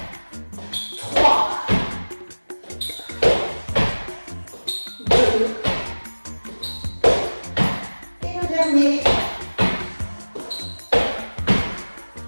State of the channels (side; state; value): both; inverted; correlation -1.00